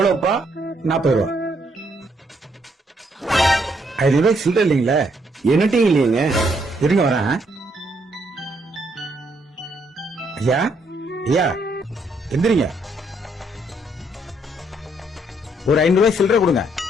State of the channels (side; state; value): both; normal; correlation 0.72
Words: 40 ரூபா. 5 ரூபாய்க்கு சில்லறை இல்லைங்களே. என்னட்டையும் இல்லையங்க. இருங்க வரேன். ஐயா ஐயா எந்திரிங்க. ஒரு 5 ரூபாய் சில்லறை கொடுங்க.